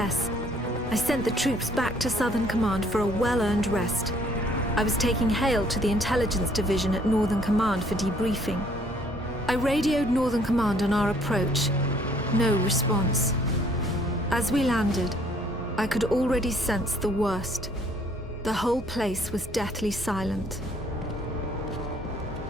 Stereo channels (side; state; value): both; normal; correlation 0.62